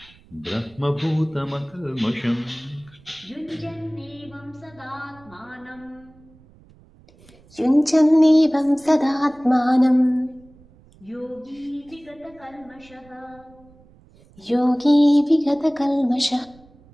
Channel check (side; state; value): right; noise; rumble, 27 dB below the sound